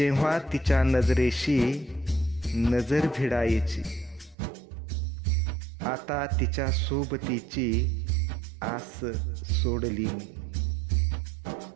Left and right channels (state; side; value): drops out; left; at 4.4 s